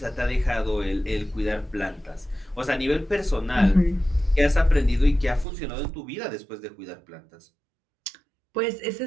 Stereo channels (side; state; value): left; drops out; at 5.5 s